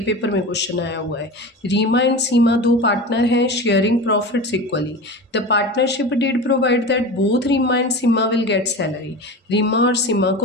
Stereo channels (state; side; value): normal; both; correlation 0.30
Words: में क्वेश्चन आया हुआ है। रीमा एंड सीमा दो पार्टनर हैं, sharing profits equally. The partnership did provide that both Reema and Seema will get salary. Reema और सीमा